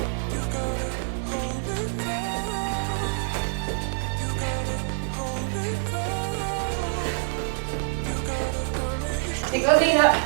Take those knees up.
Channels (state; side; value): silent; left; digital silence